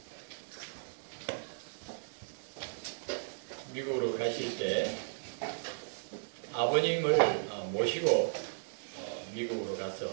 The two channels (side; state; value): left; silent; digital silence